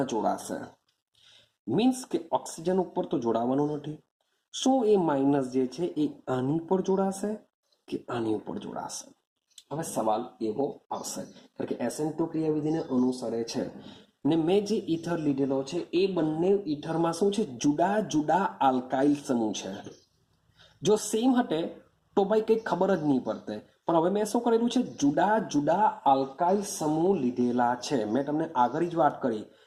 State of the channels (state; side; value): identical; both; correlation 1.00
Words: જોડાશે? મીન્સ કે ઓક્સિજન ઉપર તો જોડાવાનું નથી. શું એ માઇનસ જે છે એ આની ઉપર જોડાશે કે આની ઉપર જોડાશે? હવે સવાલ એવો આવશે કારણ કે SN2 ક્રિયાવિધિને અનુસરે છે ને મેં જે ઈથર લીધેલો છે એ બંને ઈથરમાં શું છે? જુદા જુદા આલ્કાઇલ સમૂહ છે. જો સેમ હટે તો ભાઈ કંઈ ખબર જ નહીં પડતે, પણ હવે મેં શું કરેલું છે? જુદા જુદા આલ્કાઇલ સમૂહ લીધેલા છે. મેં તમને આગળ જ વાત કરી